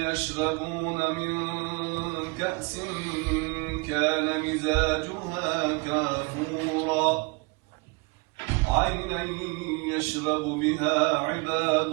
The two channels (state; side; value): quieter; left; 29.6 dB